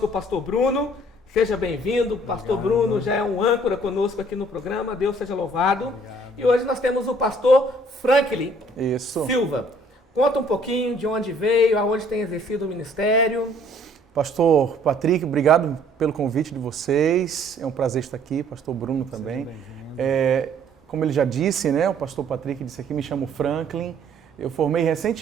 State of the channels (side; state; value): both; normal; correlation 0.59